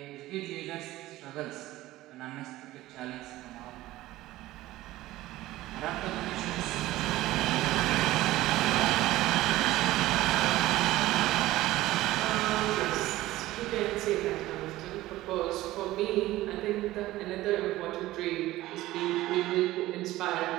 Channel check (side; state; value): left; quieter; 16.6 dB